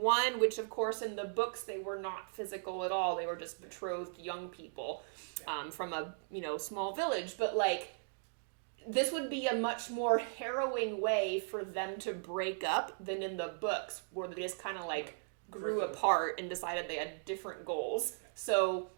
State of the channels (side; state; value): left; silent; digital silence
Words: 1, which of course in the books they were not physical at all. They were just betrothed young people from a small village. But like, this would be a much more harrowing way for them to break up than in the books, where they just kind of like grew apart and decided they had different goals. So